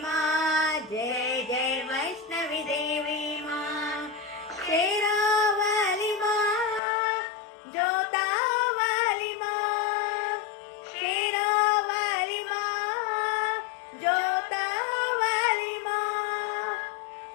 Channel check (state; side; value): drops out; right; at 6.8 s